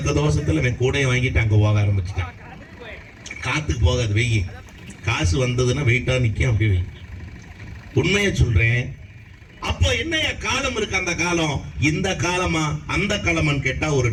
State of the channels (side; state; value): both; identical; correlation 1.00